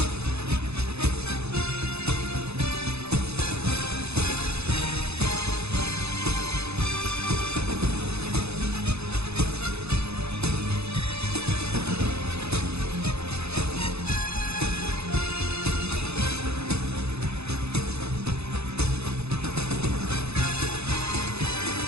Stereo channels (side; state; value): left; late; 0.79 ms